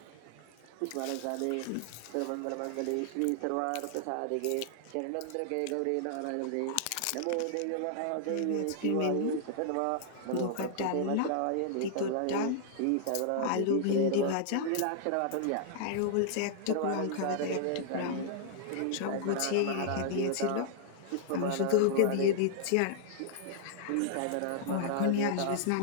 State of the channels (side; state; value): both; different; correlation -0.01